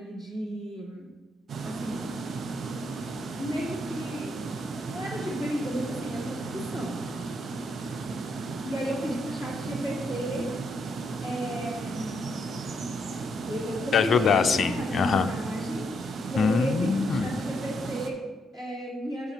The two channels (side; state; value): both; normal; correlation 0.77